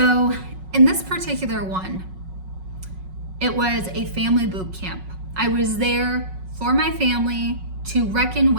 in this particular one, it was a family boot camp. I was there for my family to reckon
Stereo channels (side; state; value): left; late; 5.4 ms